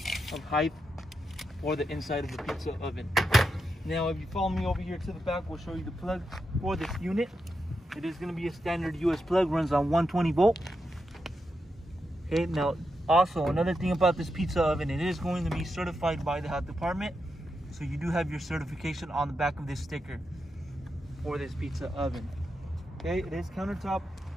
of height for the inside of the pizza oven. Now if you follow me over here to the back, we'll show you the plug for this unit. It is going to be a standard US plug, runs on 120 volt. Okay, now also another thing about this pizza oven, it is going to be certified by the health department. So you do have your certification on the back of this sticker for this pizza oven. Okay, it is countertop.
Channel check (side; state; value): both; normal; correlation 0.85